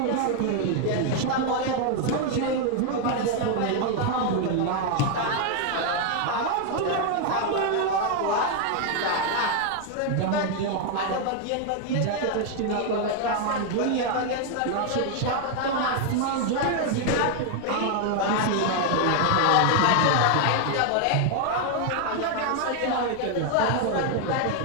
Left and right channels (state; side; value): different; both; correlation 0.00